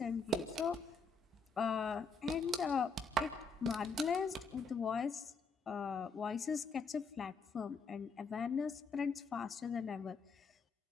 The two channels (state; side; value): quieter; right; 4.0 dB